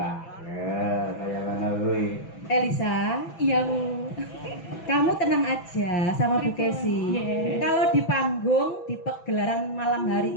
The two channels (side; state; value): right; late; 6.0 ms